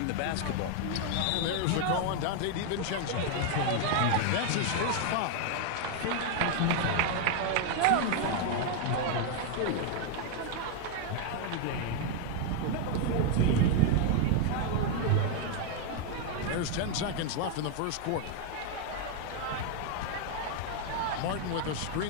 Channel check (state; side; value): different; both; correlation 0.00